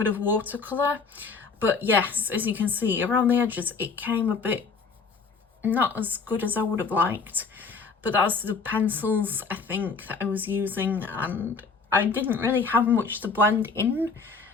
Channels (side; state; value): right; quieter; 4.8 dB